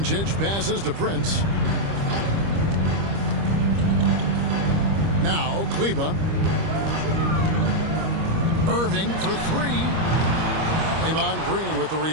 passes to Prince. Now Kleba. Irving for three. Draymond Green with the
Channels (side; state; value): left; late; 25 ms